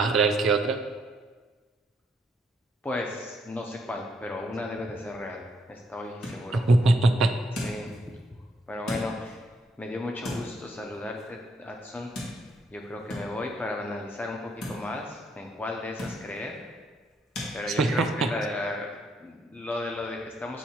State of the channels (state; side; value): normal; both; correlation 0.73